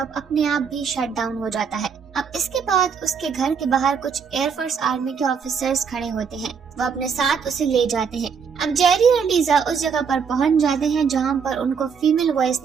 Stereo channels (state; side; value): quieter; left; 6.3 dB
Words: अपने आप भी शट डाउन हो जाता है। अब इसके बाद उसके घर के बाहर कुछ एयरफोर्स आर्मी के ऑफिसर्स खड़े होते हैं। वो अपने साथ उसे ले जाते हैं। अब जेरी और लीजा उस जगह पर पहुंच जाते हैं जहां पर उनको फीमेल वॉइस